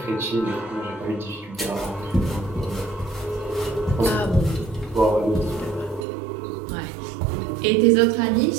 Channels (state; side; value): drops out; left; at 6.1 s